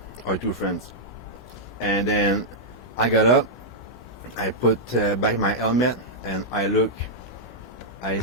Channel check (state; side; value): normal; both; correlation -0.07